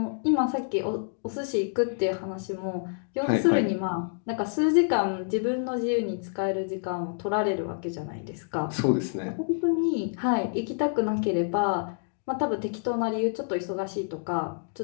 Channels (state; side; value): silent; right; digital silence